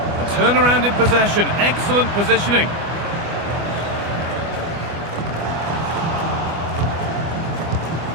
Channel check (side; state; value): left; late; 25 ms